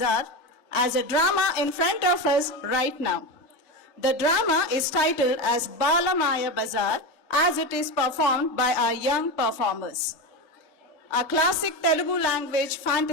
as a drama in front of us right now. The drama is titled as Bala Maya Bazaar as it is performed by our young performers. A classic Telugu language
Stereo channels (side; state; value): both; normal; correlation 0.19